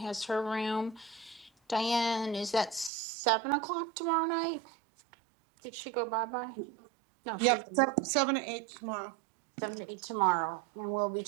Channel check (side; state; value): left; drops out; at 2.9 s